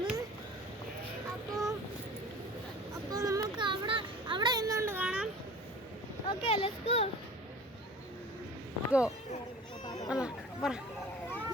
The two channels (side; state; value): both; normal; correlation 0.42